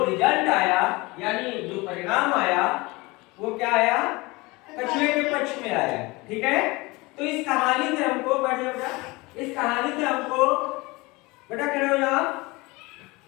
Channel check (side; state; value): right; quieter; 23.5 dB